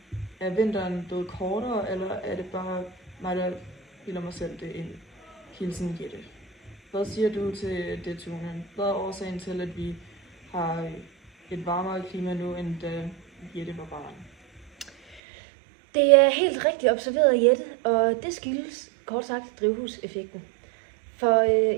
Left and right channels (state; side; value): drops out; left; at 15.2 s